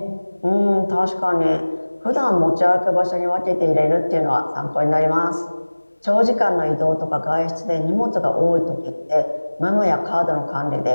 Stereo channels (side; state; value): both; inverted; correlation -1.00